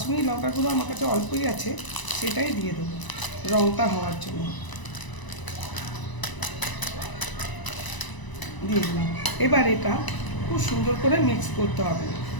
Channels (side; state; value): right; late; 1.0 ms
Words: লঙ্কার গুঁড়ো আমার কাছে অল্পই আছে, সেটাই দিয়ে দেবো রঙটা হওয়ার জন্য। দিয়ে দিলাম। এবার এটা খুব সুন্দর করে মিক্স করতে হবে।